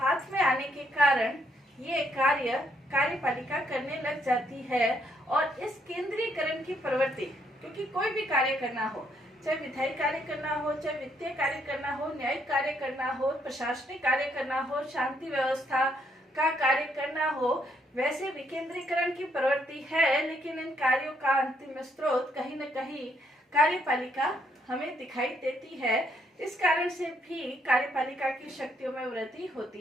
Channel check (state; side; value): normal; both; correlation 0.72